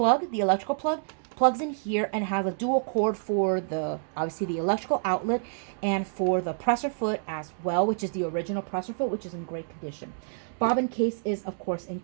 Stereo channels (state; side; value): silent; left; digital silence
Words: plug plugs in here and has a dual cord for the, obviously, the electrical outlet and for the presser foot as well, which is the original presser foot, which is in great condition. Bobbin case is, of course,